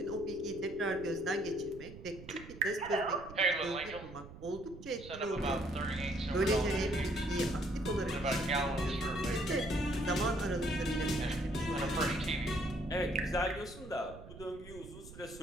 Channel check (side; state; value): right; noise; rumble, 16 dB below the sound